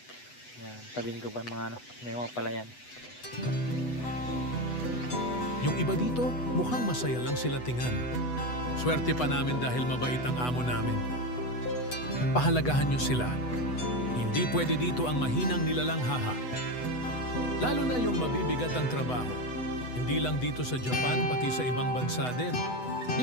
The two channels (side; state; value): right; late; 8.0 ms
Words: Yan, tabing gubat mga may mga palayan. Yung iba dito, mukhang masaya lang sila tingnan. Swerte pa namin dahil mabait ang amo namin. Pahalagahan niyo sila. Hindi pwede dito ang mahinang nilalanghaha. Lalo na yung mabibigat ang trabaho. Hindi lang dito sa Japan, pati sa ibang bansa din.